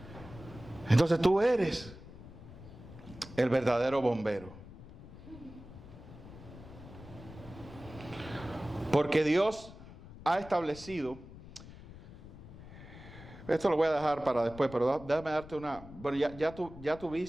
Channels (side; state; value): left; noise; rumble, 16 dB below the sound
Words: Entonces tú eres el verdadero bombero. Porque Dios ha establecido, esto lo voy a dejar para después, pero déjame darte una, bueno, ya tú